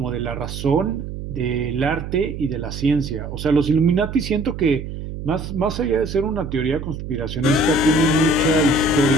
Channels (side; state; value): right; noise; hum, 8 dB below the sound